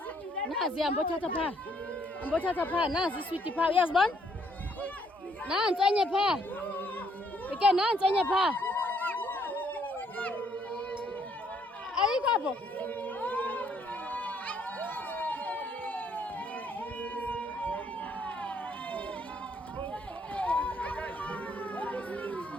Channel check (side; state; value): both; normal; correlation 0.68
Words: Nazi ambothatha pha. Ambothatha pha nazi sweet pha. Uyazibona? Nansi enye pha. Ike nansi enye pha. Ayikho apho.